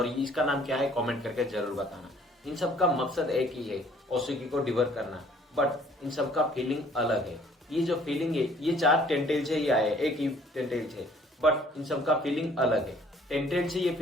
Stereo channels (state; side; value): normal; both; correlation 0.57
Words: इसका नाम क्या है कमेंट करके जरूर बताना। इन सब का मकसद एक ही है, ओसुकी को डिवर करना। बट इन सब का फीलिंग अलग है। ये जो फीलिंग है, ये 4 टेंटेल से ही आए, एक ही टेंटेल से। बट इन सब का फीलिंग अलग है। टेंटेल से ये